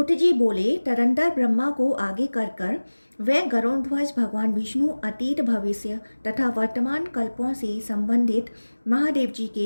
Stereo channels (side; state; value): both; inverted; correlation -1.00